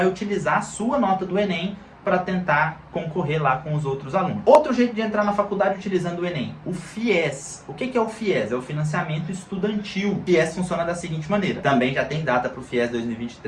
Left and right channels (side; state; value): both; identical; correlation 1.00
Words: utilizar a sua nota do Enem para tentar concorrer lá com os outros alunos. Outro jeito de entrar na faculdade utilizando o Enem, o FIES. O que é o FIES? É o Financiamento Estudantil. O FIES funciona da seguinte maneira. Também já tem data para o FIES